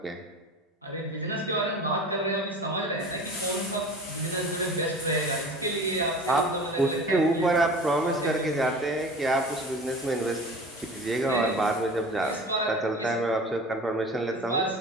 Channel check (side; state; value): both; normal; correlation 0.38